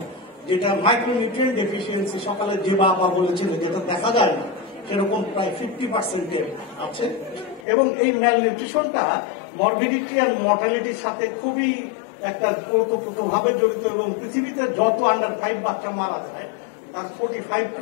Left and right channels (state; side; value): drops out; right; at 7.7 s